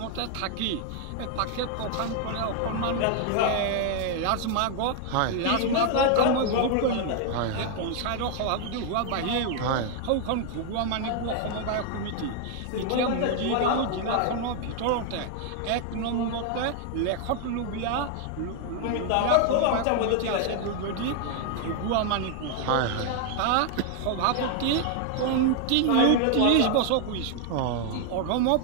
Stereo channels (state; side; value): different; both; correlation 0.00